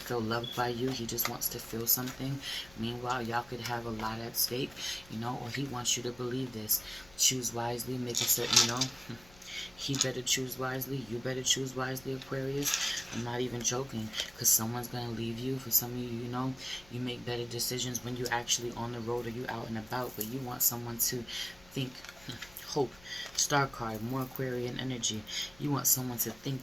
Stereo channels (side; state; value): left; noise; rumble, 23 dB below the sound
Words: loved by you, he just wants to feel something. Meanwhile, y'all could have a lot at stake, you know, or he wants you to believe this. Choose wisely, make a certain, you know, he better choose wisely. You better choose wisely, Aquarius. I'm not even joking, because someone's going to leave you. For some of you, you know, you make better decisions when you're actually on the road or you out and about, but you want someone to think, hope, star card, more Aquarian energy. You want someone to